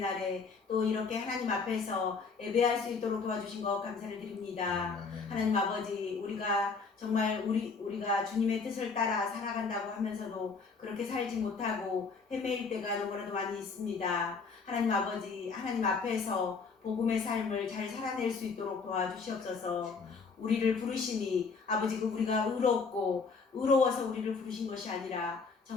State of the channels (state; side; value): quieter; right; 4.8 dB